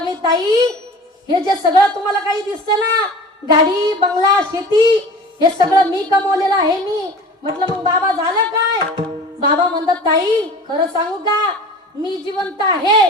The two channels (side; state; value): both; normal; correlation 0.40